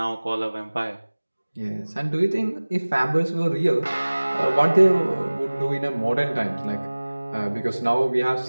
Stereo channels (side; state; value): both; inverted; correlation -1.00